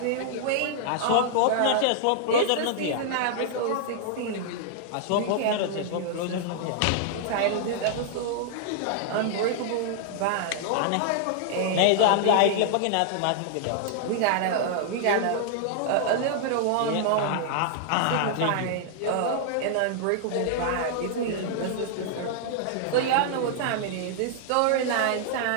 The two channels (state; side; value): different; both; correlation -0.01